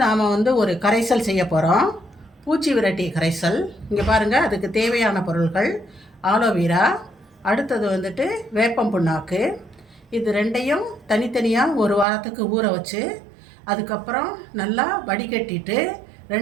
நாம் ஒரு கரைசல் செய்ய போகிறோம். பூச்சி விரட்டி கரைசல். இங்கே பாருங்கள், அதுக்கு தேவையான பொருட்கள் ஆலோவேரா, அடுத்தது வேப்பம் புண்ணாக்கு. இது ரெண்டையும் தனித்தனியாக ஒரு வாரத்துக்கு ஊற வச்சு அதுக்கப்புறம் நல்லா வடிகட்டிட்டு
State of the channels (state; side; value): drops out; left; at 12.1 s